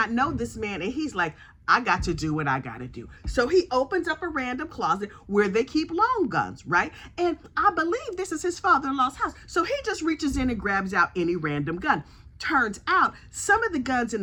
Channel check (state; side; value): identical; both; correlation 1.00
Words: know this man, and he's like, I got to do what I got to do. So he opens up a random closet where they keep long guns, right? And I believe this is his father-in-law's house. So he just reaches in and grabs out any random gun. Turns out some of the guns in